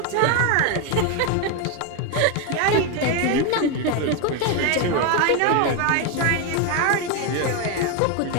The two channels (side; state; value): both; different; correlation 0.02